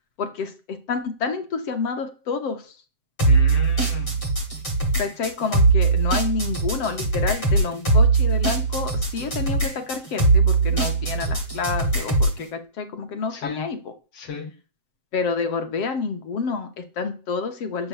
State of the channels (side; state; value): right; late; 7.7 ms